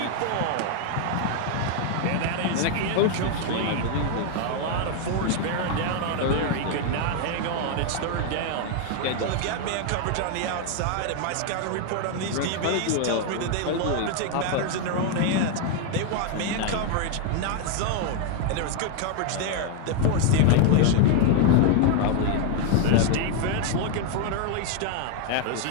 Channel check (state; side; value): different; both; correlation 0.01